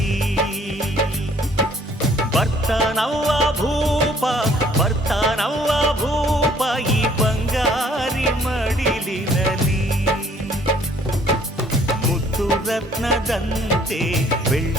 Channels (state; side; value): normal; both; correlation 0.60